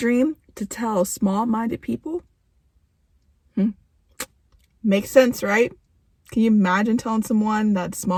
to tell small-minded people? Makes sense, right? Can you imagine telling someone that's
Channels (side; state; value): both; identical; correlation 1.00